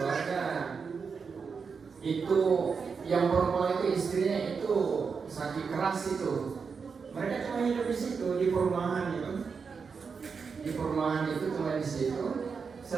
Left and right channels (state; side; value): quieter; left; 5.5 dB